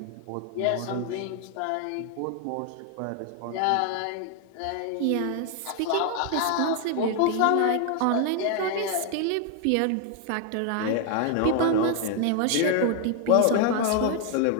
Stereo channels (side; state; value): both; different; correlation 0.00